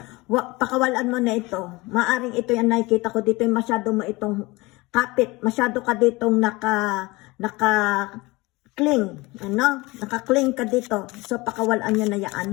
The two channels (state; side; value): quieter; right; 22.7 dB